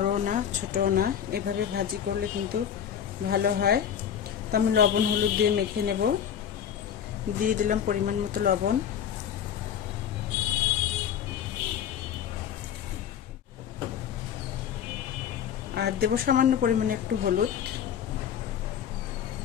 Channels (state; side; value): quieter; right; 8.9 dB